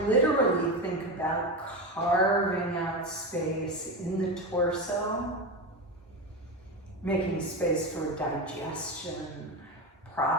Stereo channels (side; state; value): both; normal; correlation 0.18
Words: literally think about carving out space in the torso, making space for digestion,